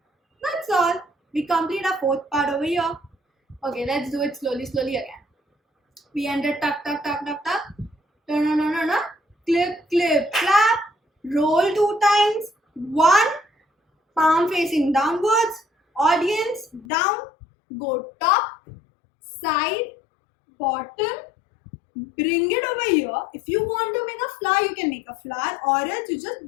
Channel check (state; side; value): drops out; right; at 16.9 s